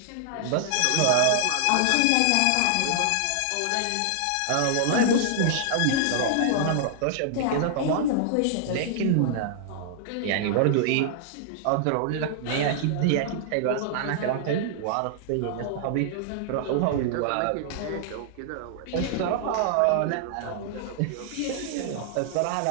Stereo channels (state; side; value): different; both; correlation -0.01